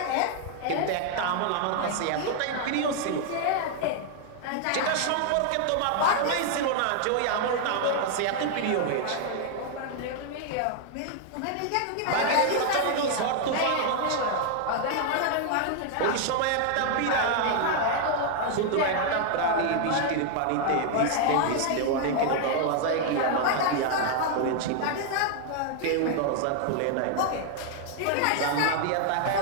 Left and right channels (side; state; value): both; different; correlation 0.00